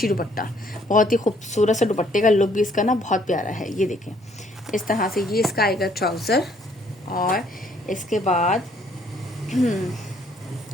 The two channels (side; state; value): both; normal; correlation 0.64